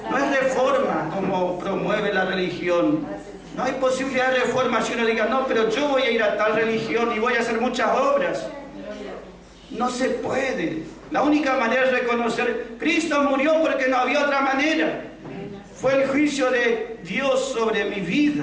No es reforma como promueve la religión. No hay posibilidad de reforma si uno diga, no, pero yo voy a ir a tal religión y voy a hacer muchas obras. No se puede. La única manera es reconocer, Cristo murió porque no había otra manera. Fue el juicio de Dios sobre mi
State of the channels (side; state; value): both; identical; correlation 1.00